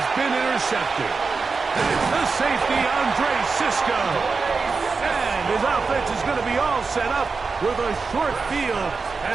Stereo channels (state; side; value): quieter; left; 4.6 dB